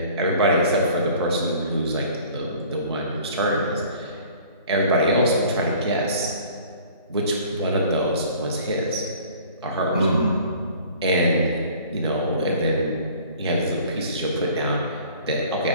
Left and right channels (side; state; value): both; inverted; correlation -0.49